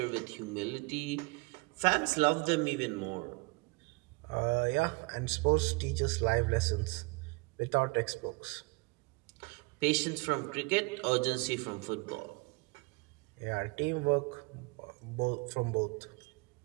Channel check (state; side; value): quieter; left; 27.7 dB